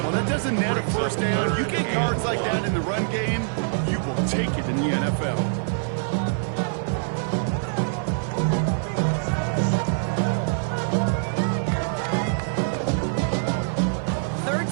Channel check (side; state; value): left; silent; 58 dB below the other